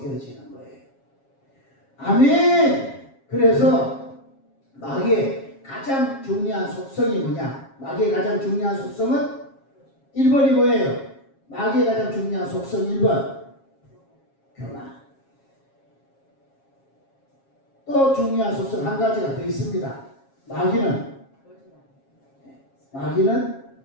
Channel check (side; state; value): right; late; 7.4 ms